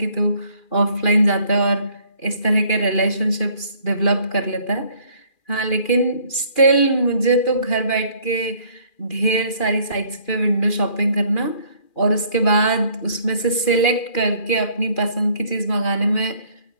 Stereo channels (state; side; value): late; right; 2.4 ms